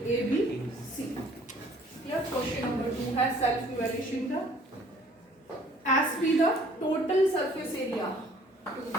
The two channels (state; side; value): normal; both; correlation 0.56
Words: A B C. Question number 2 है सेल्फ इवैल्यूएशन का। S be the total surface area